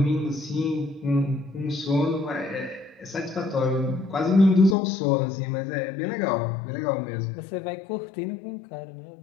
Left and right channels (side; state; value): right; drops out; at 4.8 s